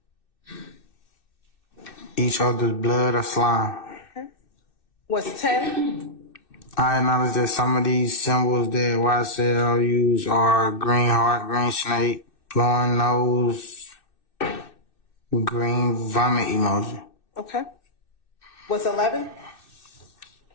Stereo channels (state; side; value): late; right; 2.6 ms